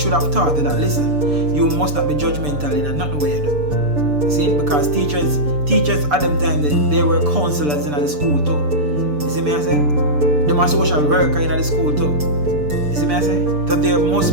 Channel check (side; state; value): left; late; 6.8 ms